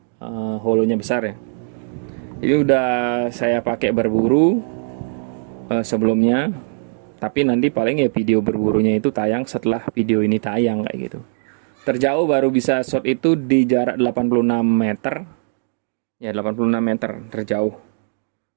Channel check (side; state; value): left; silent; digital silence